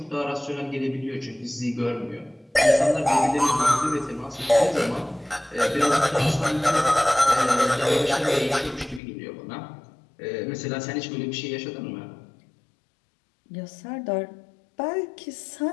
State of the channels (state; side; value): drops out; right; at 9.0 s